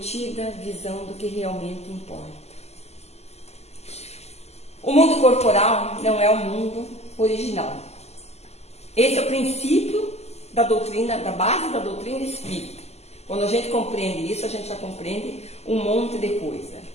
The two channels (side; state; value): right; late; 0.30 ms